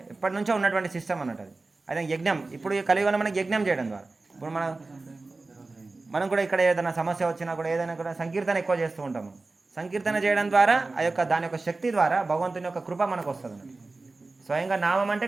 ఎప్పటి నుంచో ఉన్నటువంటి సిస్టమ్ అన్నట్టు అది. అదే యజ్ఞం. ఇప్పుడు ఈ కలియుగంలో మనకి యజ్ఞం చేయడం ద్వారా ఇప్పుడు మనం కూడా ఇక్కడ ఏదైనా సమస్య వచ్చినా కూడా ఏదైనా కూడా సంకీర్తన ఎక్కువ చేస్తూ ఉంటాము. సంకీర్తన చేయడం ద్వారా ఆ యొక్క దాని యొక్క శక్తి ద్వారా భగవంతుని యొక్క కృప మనకు వస్తుంది అన్నట్టు. స్వయంగా నామం అంటే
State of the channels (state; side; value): quieter; left; 3.5 dB